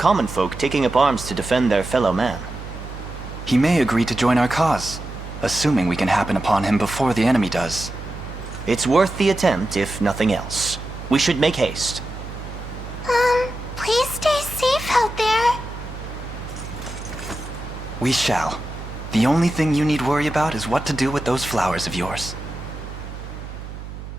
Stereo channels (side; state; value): right; noise; hum, 11 dB below the sound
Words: folk taking up arms to defend their fellow man. He may agree to join our cause, assuming we can happen upon him before the enemy does. It's worth the attempt, if nothing else. We should make haste. Please stay safe out there. We shall. The only thing you need worry about is what to do with those flowers of yours.